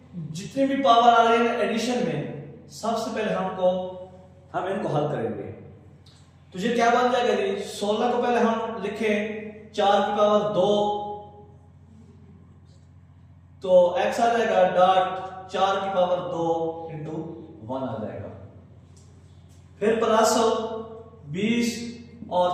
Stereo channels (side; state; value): both; identical; correlation 1.00